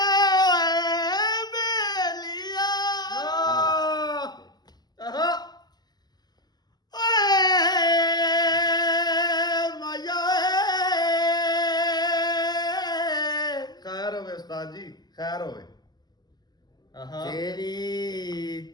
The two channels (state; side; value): late; right; 0.20 ms